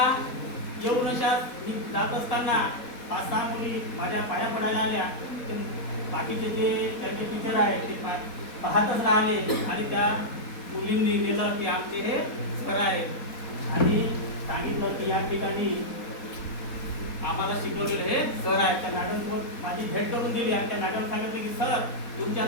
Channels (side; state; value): right; late; 4.2 ms